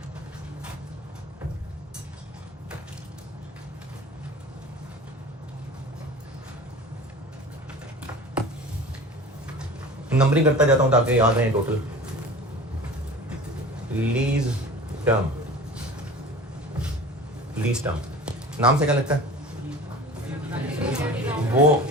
नंबरिंग करता जाता हूं ताकि याद रहे total. Lease term, lease term नाम से क्या लगता है? वो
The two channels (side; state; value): both; normal; correlation 0.39